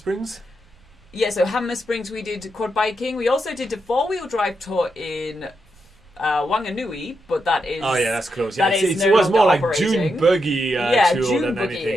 Yeah, so Hammer Springs we did quad biking. We also did a 4-wheel drive tour in Wanganui, but that is... Oh yeah, that's close. Yeah, that is it no was more longer like June operating. buggy tour June than anything. Yeah,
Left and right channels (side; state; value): right; noise; rumble, 29 dB below the sound